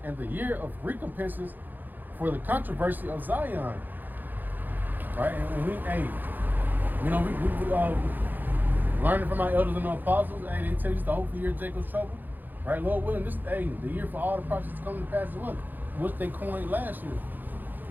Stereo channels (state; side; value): late; left; 0.087 ms